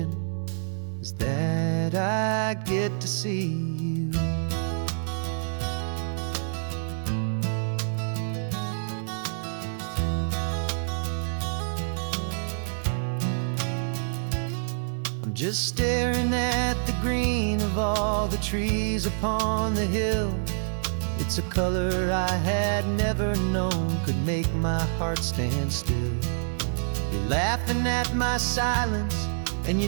is that I get to see you. I'm just staring at the green of all the trees upon the hill. It's a color I had never known could make my heart stand still. You're laughing at my silence, and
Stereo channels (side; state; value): left; silent; digital silence